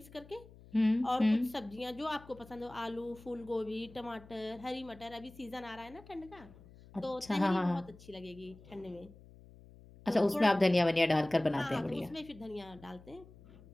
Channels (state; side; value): noise; left; hum, 21 dB below the sound